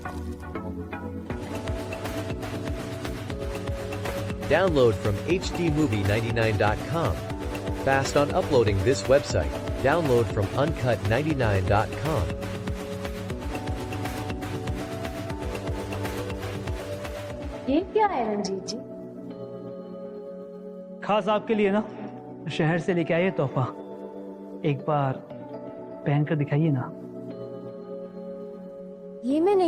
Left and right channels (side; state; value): both; identical; correlation 1.00